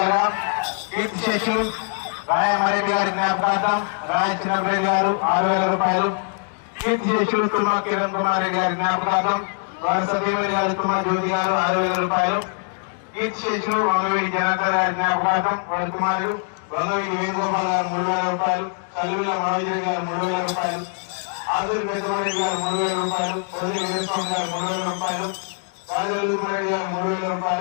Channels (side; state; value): right; silent; 59 dB below the other